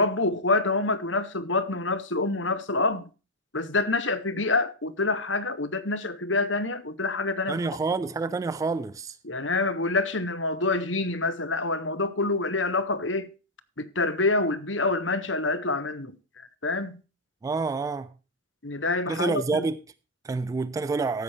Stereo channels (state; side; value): normal; both; correlation -0.01